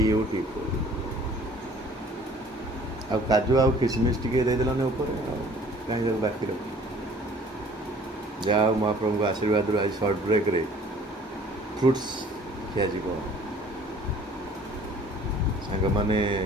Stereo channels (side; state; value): both; normal; correlation 0.52